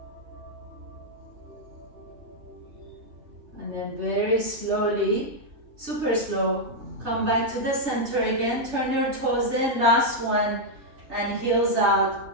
And then very slowly, super slow, come back to the center again. Turn your toes in, last one, and heels out.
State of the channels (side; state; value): left; late; 3.2 ms